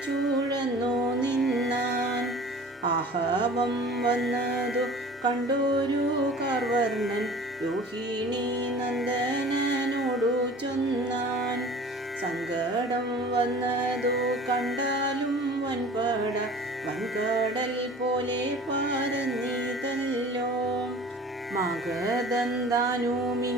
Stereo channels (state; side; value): normal; both; correlation 0.43